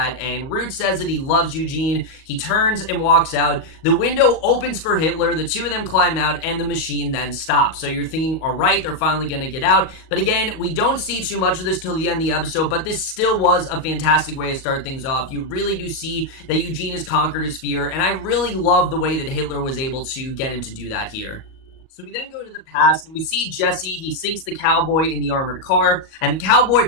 And Root says that he loves Eugene. He turns and walks out. The window opens for Hitler. The two of them climb out and the machine then stops. So you're thinking, all right, they're finally going to get out. But again, we don't see too much of this till the end of the episode, but this still was a fantastic way to start things off. You really do see that Eugene has conquered his fear, and I really love the way that Hitler was able to get him to do that here. So we then go to the past, and we see Jesse. He sinks the cowboy in the armored car, and the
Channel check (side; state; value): right; late; 37 ms